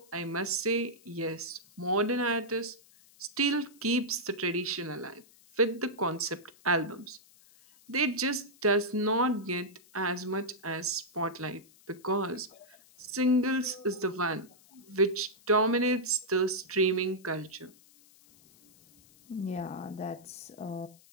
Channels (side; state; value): left; noise; hiss, 26 dB below the sound